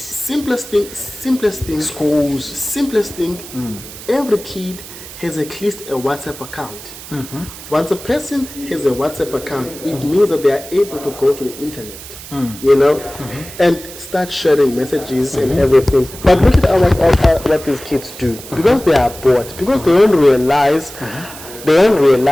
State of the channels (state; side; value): noise; right; hiss, 15 dB below the sound